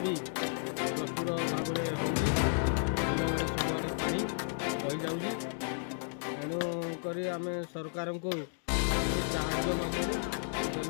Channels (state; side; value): silent; right; digital silence